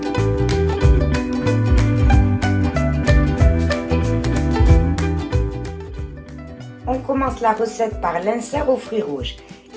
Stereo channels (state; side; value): identical; both; correlation 1.00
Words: On commence la recette par l'insert aux fruits rouges.